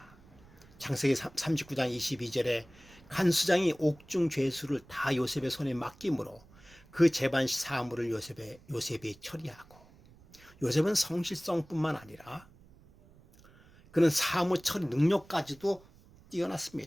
창세기 39장 22절에 간수장이 옥중 죄수를 다 요셉의 손에 맡김으로 그 재반 사물을 요셉이 처리하고 요셉은 성실성뿐만 아니라 그는 사무 처리 능력까지도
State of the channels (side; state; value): right; noise; rumble, 25 dB below the sound